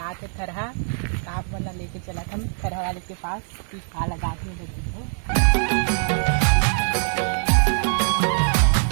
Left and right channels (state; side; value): silent; left; digital silence